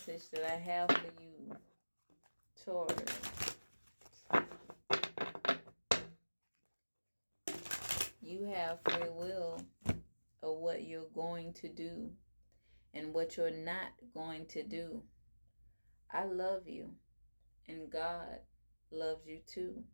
that I have for you. Taurus. You have free will of what you're going to do and what you're not going to do. I love you, and God loves you too.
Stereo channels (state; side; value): inverted; both; correlation -1.00